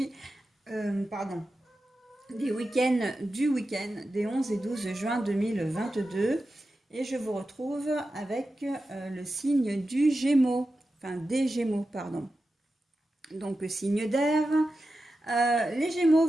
du week-end des 11 et 12 juin 2022. Et je vous retrouve avec le signe du Gémeaux, enfin des Gémeaux, pardon. Donc signe d'air. Les Gémeaux,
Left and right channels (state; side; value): normal; both; correlation 0.92